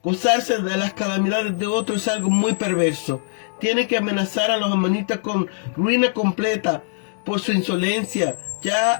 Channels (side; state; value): right; silent; digital silence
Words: Gozarse de las calamidades de otros es algo muy perverso. Tiene que amenazar a los amonitas con ruina completa por su insolencia. Ya